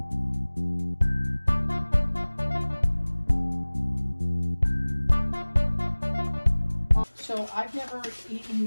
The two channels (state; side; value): inverted; both; correlation -1.00